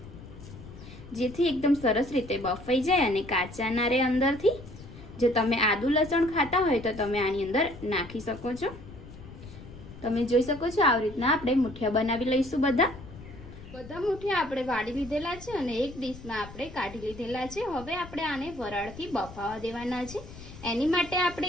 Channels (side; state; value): left; noise; rumble, 16 dB below the sound